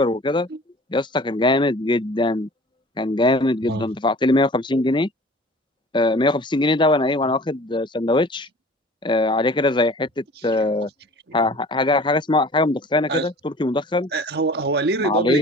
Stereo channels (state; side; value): normal; both; correlation 0.45